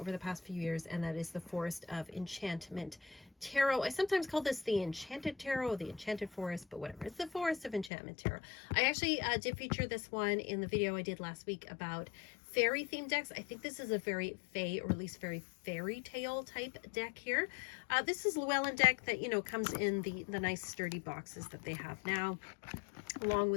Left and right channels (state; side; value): drops out; right; at 7.9 s